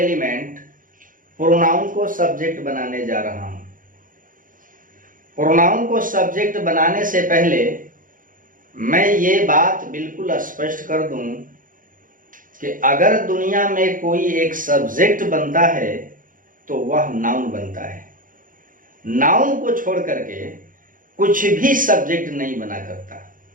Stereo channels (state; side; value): late; left; 0.39 ms